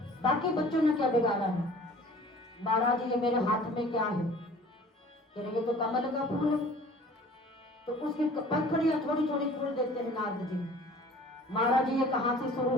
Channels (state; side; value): normal; both; correlation 0.48